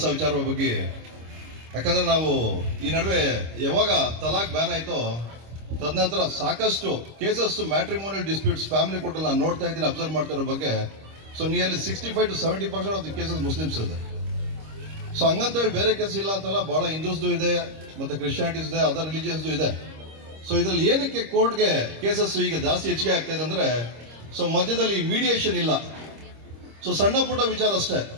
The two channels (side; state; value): left; late; 26 ms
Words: ವಿಚಾರ ಬಗ್ಗೆ. ಯಾಕಂದ್ರೆ ನಾವು ಈ ನಡುವೆ ಯಾವಾಗ ತಲಾಕ್ ಬ್ಯಾನ್ ಆಯ್ತೋ ತದನಂತರ ಸಾಕಷ್ಟು ಕೇಸಸ್ ಮ್ಯಾಟ್ರಿಮೋನಿಯಲ್ ಡಿಸ್ಪ್ಯೂಟ್ಸ್ ಫ್ಯಾಮಿಲಿ ಕೋರ್ಟಲ್ಲಿ ನಾನು ನೋಡ್ತಾ ಇದ್ದೀನಿ, ಅಬ್ಸರ್ವ್ ಮಾಡ್ತಾ ಇರೋ ಬಗ್ಗೆ. So nearly 65 to 70% of the cases Muslims ಇದೆ. ಸೊ ಹಂಗಂತ ಹೇಳಿ ಬೇರೆ ಕೇಸ್ ಇಲ್ಲ ಅಂತಲ್ಲ, ಬಹಳ ಹಿಂದೂಸ್ದು ಇದೆ, ಮತ್ತೆ ಕ್ರಿಶ್ಚಿಯಾನಿಟೀಸ್ ಇದೆ, ಅದರ್ ರಿಲಿಜಿಯನ್ಸ್ದು ಇದೆ. ಸೊ ಇದ್ರಲ್ಲಿ ಏನಕ್ಕೆ ಕೋರ್ಟ್ಗೆ ಕೇಸಸ್ ಈಗ ಜಾಸ್ತಿ ಹೆಚ್ಚಿಗೆ ಆಗ್ತಾ ಇದೆ ಅಂದ್ರೆ, ಸೊ ಮಧ್ಯದಲ್ಲಿ ಮೀಡಿಯೇಷನ್ ಇಲ್ಲ. ಸೊ ಸಣ್ಣ ಪುಟ್ಟ ವಿಚಾರ ಅಷ್ಟೇ.